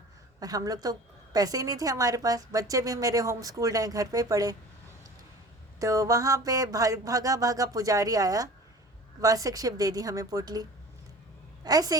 और हम लोग तो पैसे ही नहीं थे हमारे पास, बच्चे भी मेरे होम स्कूल्ड हैं, घर पे पढ़े। तो वहाँ पे भागा भागा पुजारी आया, वार्षिक शिव दे दी हमें पोटली, ऐसे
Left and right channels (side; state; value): both; normal; correlation 0.42